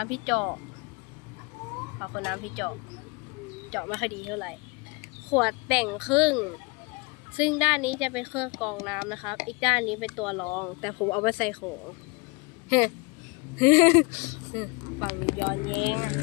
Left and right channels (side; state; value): right; quieter; 28.2 dB